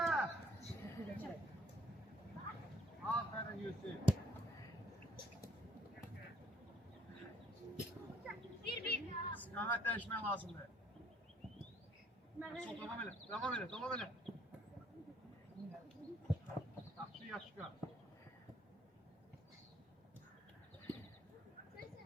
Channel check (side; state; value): both; normal; correlation 0.63